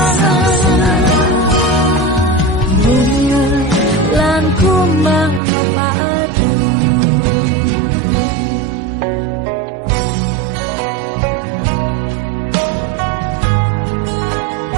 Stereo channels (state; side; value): drops out; left; at 5.4 s